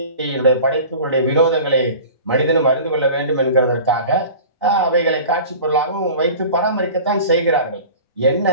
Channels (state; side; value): inverted; both; correlation -0.39